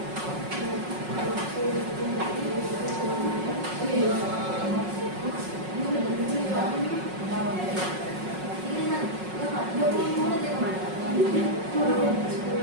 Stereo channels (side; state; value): left; late; 5.4 ms